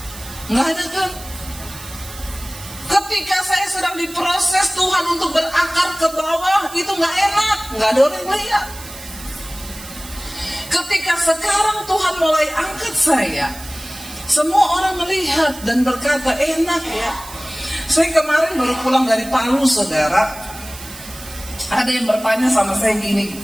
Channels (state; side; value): noise; right; hiss, 15 dB below the sound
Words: Nggak ada kan? Ketika saya sedang diproses Tuhan untuk berakar ke bawah, itu nggak enak, nggak ada orang yang lihat. Ketika sekarang Tuhan mulai angkat saya, semua orang melihat dan berkata, enak ya. Saya kemarin baru pulang dari Palu, saudara. Ada yang bertanya sama saya gini